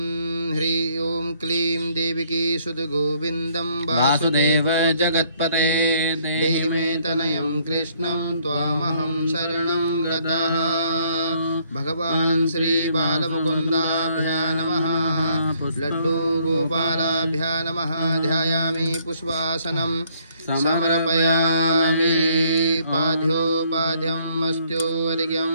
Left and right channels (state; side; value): inverted; both; correlation -0.66